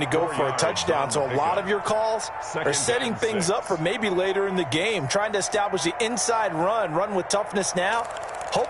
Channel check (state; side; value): identical; both; correlation 1.00